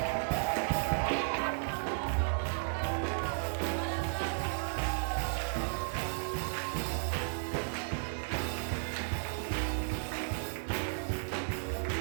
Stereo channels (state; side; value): silent; left; digital silence